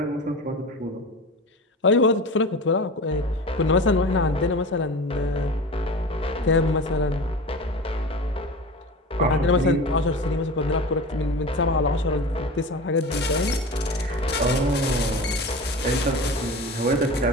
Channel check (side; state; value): both; normal; correlation 0.32